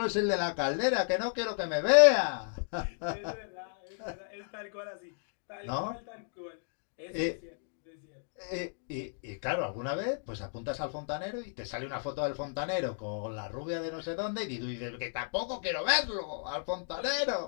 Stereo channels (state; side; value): silent; right; digital silence